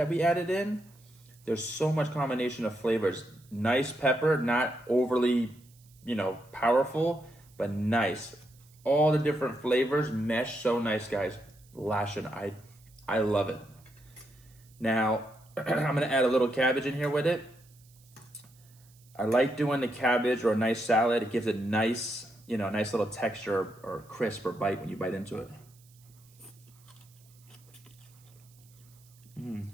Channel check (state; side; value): noise; right; hiss, 28 dB below the sound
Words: we added in. There's so much combination of flavors. Nice pepper, not overly, you know, powerful, but nice. All the different flavors mesh so nice, guys. Lashing, I love it. Now, I'm gonna add a little cabbage in here with it. I like doing the cabbage or a nice salad. It gives it nice, you know, nice little texture or crisp or bite when you bite into it.